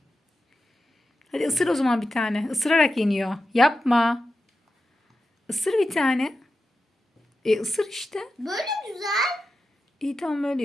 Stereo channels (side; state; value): both; normal; correlation 0.91